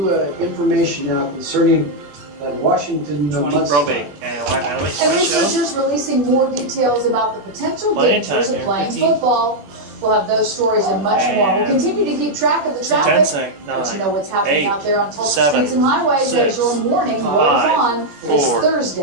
information now concerning the Washington mudslide. And researchers releasing more details about the potential dangers of playing football. We'll have those stories and much more. We'll continue to keep track of the traffic, let you know what's happening out there on Tulsa streets and highways as your morning rolls on this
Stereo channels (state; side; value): late; left; 20 ms